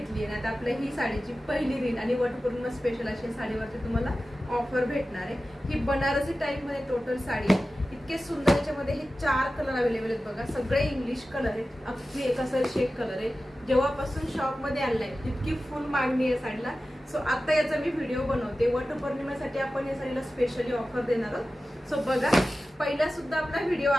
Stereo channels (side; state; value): both; normal; correlation 0.95